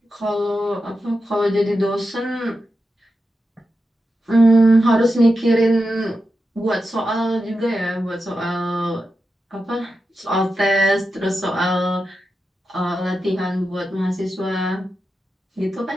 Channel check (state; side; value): normal; both; correlation 0.89